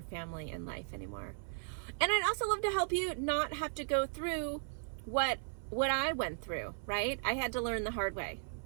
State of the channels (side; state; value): left; silent; 53 dB below the other